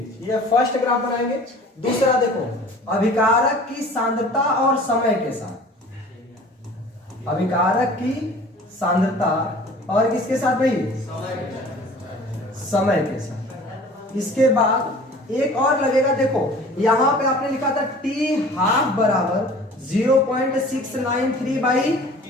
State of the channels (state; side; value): normal; both; correlation 0.46